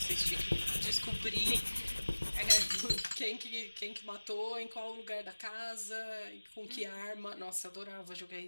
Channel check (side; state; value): both; inverted; correlation -1.00